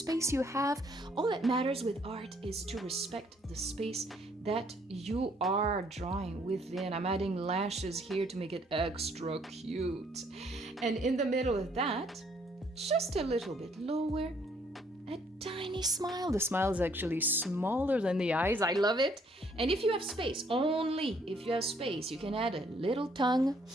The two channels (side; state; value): both; normal; correlation 0.66